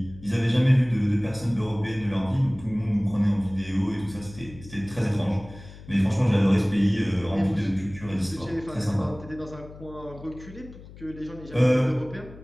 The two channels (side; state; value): left; noise; hum, 17 dB below the sound